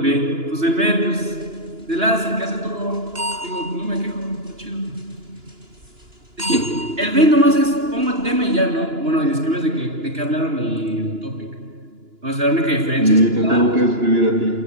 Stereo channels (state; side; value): late; left; 2.9 ms